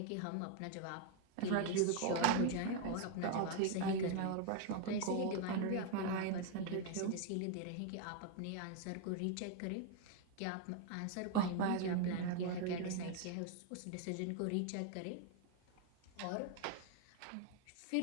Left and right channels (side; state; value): both; different; correlation 0.00